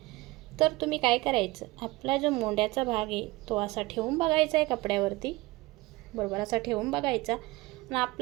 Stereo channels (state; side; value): quieter; left; 21.1 dB